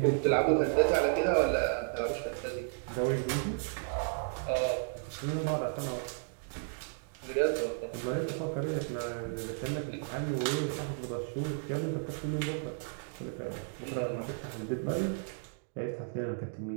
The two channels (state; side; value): silent; left; digital silence